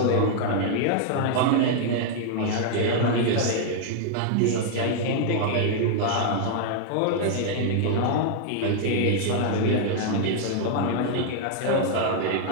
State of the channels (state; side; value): different; both; correlation 0.00